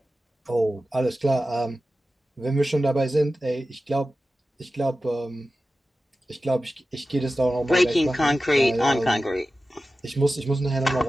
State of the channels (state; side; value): normal; both; correlation 0.94